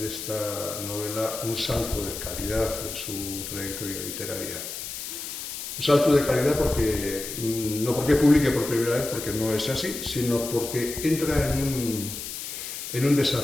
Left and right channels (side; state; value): left; noise; hiss, 7 dB below the sound